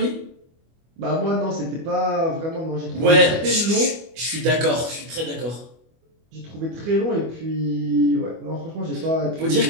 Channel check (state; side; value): late; left; 25 ms